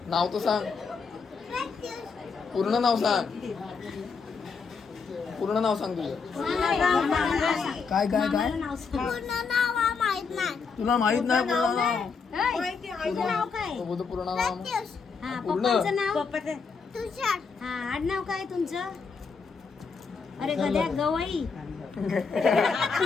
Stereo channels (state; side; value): quieter; right; 5.2 dB